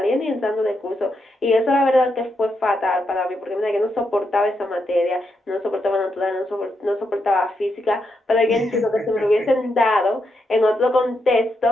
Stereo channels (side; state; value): both; normal; correlation 0.82